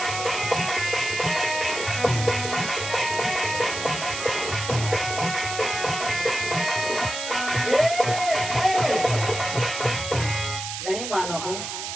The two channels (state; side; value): noise; right; hiss, 6 dB below the sound